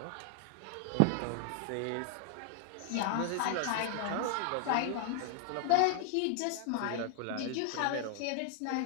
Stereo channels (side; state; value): both; different; correlation 0.00